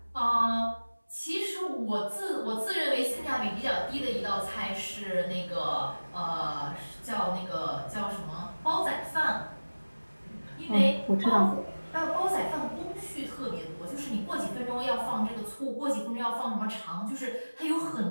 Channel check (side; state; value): both; inverted; correlation -1.00